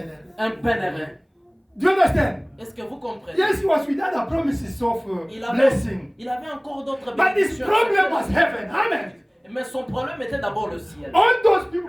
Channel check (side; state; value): both; identical; correlation 1.00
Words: un pèlerin. Do you understand? Est-ce que vous comprenez? Yes, he was with other promises of Il blessing. avait encore d'autres But his bénédictions. problem was heaven. Amen. Mais son problème était d'abord le ciel. All those